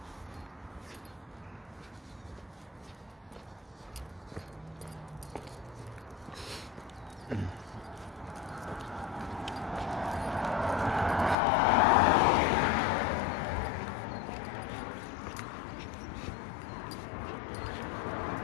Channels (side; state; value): right; drops out; at 11.4 s